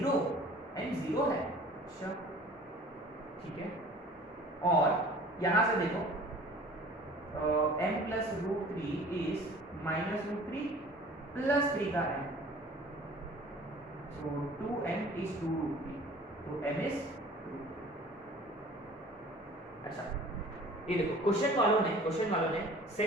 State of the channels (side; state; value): both; normal; correlation 0.47